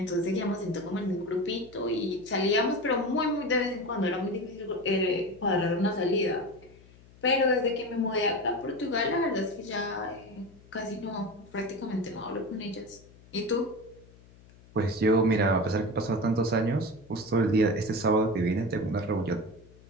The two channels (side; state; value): left; noise; hum, 24 dB below the sound